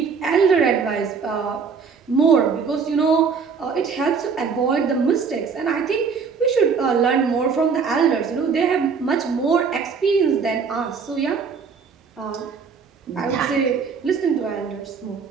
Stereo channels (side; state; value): left; quieter; 5.7 dB